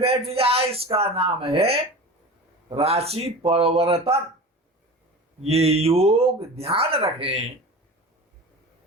बैठ जाए, इसका नाम है राशि परिवर्तन। ये योग ध्यान रखें,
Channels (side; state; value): both; normal; correlation 0.33